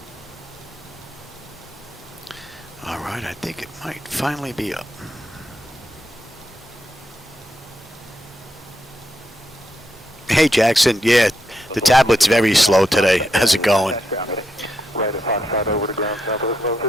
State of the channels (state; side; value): normal; both; correlation 0.82